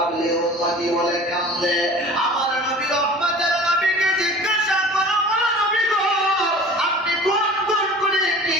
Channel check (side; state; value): both; normal; correlation 0.42